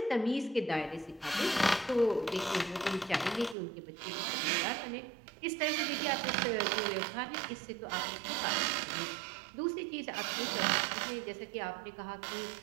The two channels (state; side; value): drops out; left; at 3.6 s